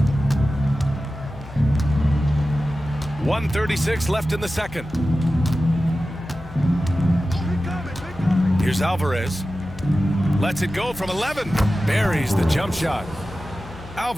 1:36 left in the second. Here's Alvarez. Lets it go from 11. Buries the jump shot.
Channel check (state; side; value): noise; left; hum, 16 dB below the sound